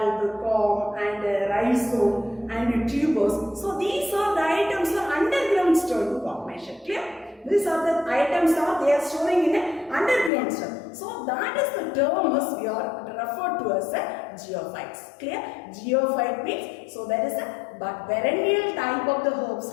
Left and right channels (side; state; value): right; drops out; at 10.3 s